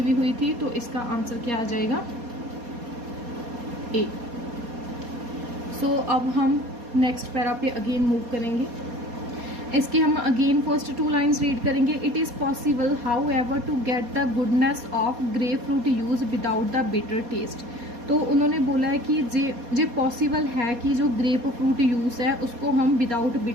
भी हुई थी। तो इसका आंसर क्या आ जाएगा, ए। सो अब हम नेक्स्ट पैरा पे अगेन मूव करेंगे। इसके हम अगेन फर्स्ट 2 लाइन्स रीड करेंगे। It is possible however to get the goodness of grapefruit juice without the bitter taste. तो उन्होंने बोला है कि जे पॉसिबल है कि जो ग्रेप फ्रूट यूज है उसको हम विदाउट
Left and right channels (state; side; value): late; left; 4.2 ms